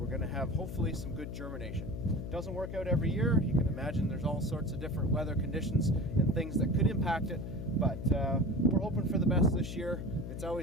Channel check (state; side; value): noise; left; hum, 7 dB below the sound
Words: going to have hopefully some good germination. It doesn't work out every year. You can imagine there's all sorts of different weather conditions and things that could impact it, but we're hoping for the best this year. It's